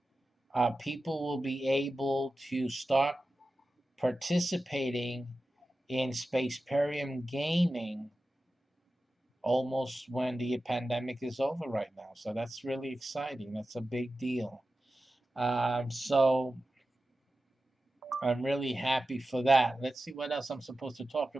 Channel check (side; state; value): both; normal; correlation 0.94